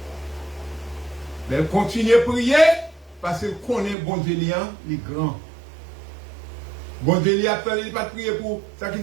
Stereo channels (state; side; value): drops out; left; at 4.0 s